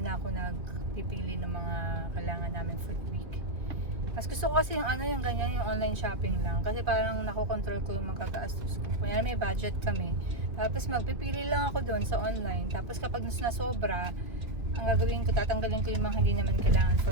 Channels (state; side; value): late; left; 2.8 ms